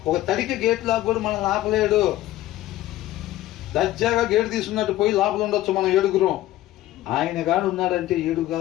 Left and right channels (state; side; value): quieter; right; 15.0 dB